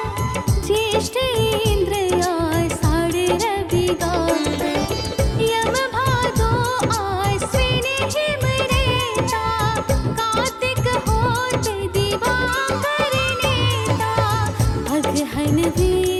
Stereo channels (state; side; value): identical; both; correlation 1.00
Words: ज्येष्ठ इंद्र आषाढ़ रवि गावे। यम भादो आश्विन हिम रेता, कार्तिक होत दिवाकर नेता। अगहन